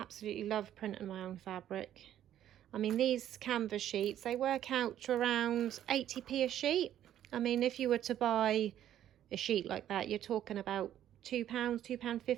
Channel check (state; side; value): quieter; left; 11.4 dB